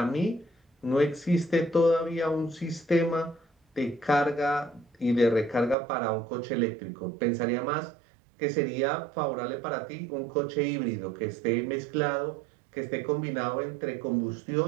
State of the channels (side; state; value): left; drops out; at 5.8 s